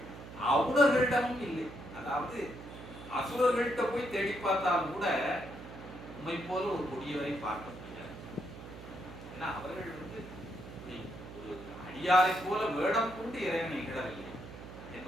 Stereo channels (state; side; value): noise; right; hum, 13 dB below the sound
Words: அவுணர்களிடமும் இல்லை. அதாவது அசுரர்கள்ட்ட போய் தேடி பார்த்தாலும் கூட உண்மை போல ஒரு கொடியவரை பார்க்க முடியாது. ஏன்னா அவர்கள் ஒரு அடியாரை போல வேடம் கொண்டு இறைவனை இகழவில்லை